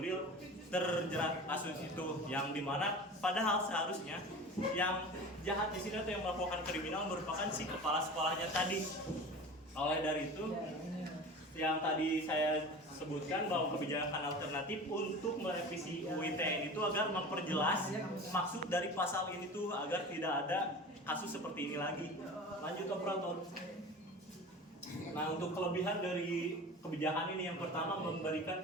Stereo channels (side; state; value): both; normal; correlation 0.35